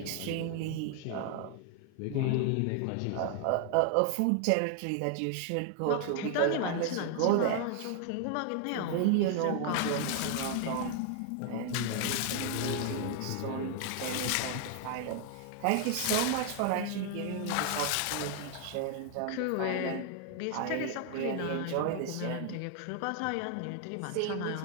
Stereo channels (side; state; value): both; different; correlation 0.00